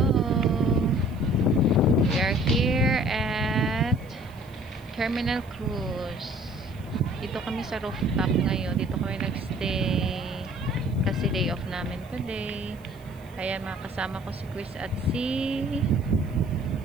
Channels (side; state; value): left; noise; hiss, 28 dB below the sound